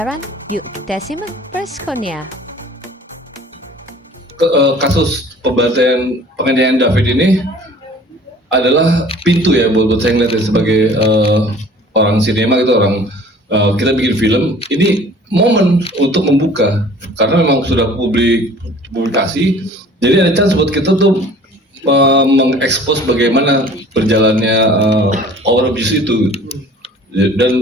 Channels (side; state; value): both; normal; correlation 0.49